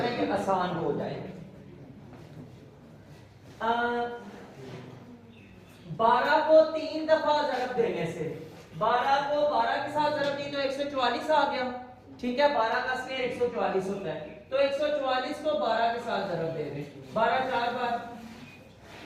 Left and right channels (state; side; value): identical; both; correlation 1.00